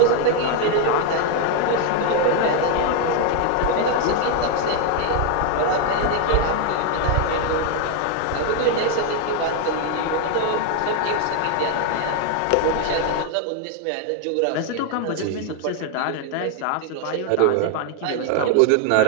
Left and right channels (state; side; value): different; both; correlation 0.01